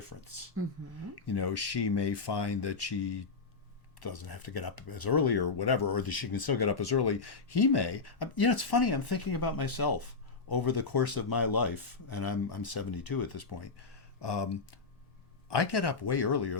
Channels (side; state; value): right; quieter; 4.4 dB